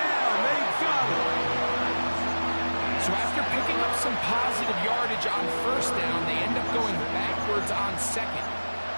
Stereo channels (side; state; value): both; inverted; correlation -1.00